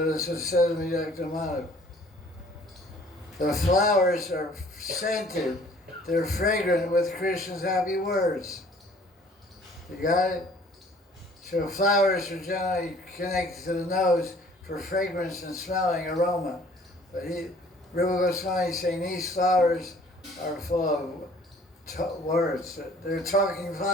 Dr. Madhav. The flowers are scented. They're fragrant with Krishna's happy words. You got it? So flowers are generally connected to the nose for fragrance and smelling aroma. But Rupa Goswami is saying these flowers are full of words. They're talking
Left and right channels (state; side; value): normal; both; correlation 0.54